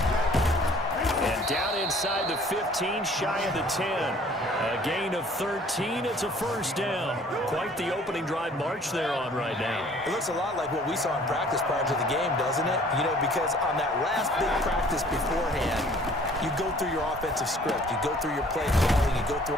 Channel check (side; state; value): both; normal; correlation 0.54